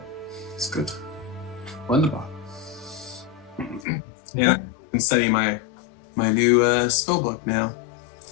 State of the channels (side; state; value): right; drops out; at 3.9 s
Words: it's good. Wonderful. Yeah, I can study my new spell book now.